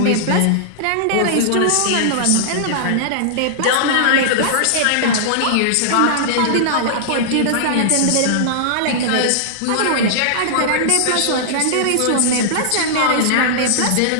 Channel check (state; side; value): different; both; correlation -0.02